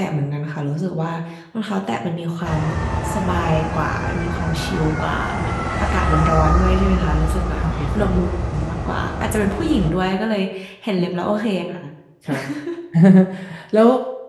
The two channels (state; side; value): identical; both; correlation 1.00